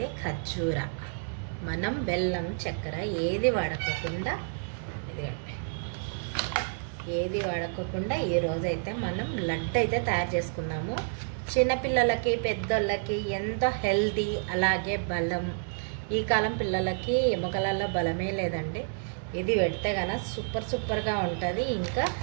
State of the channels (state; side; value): silent; left; digital silence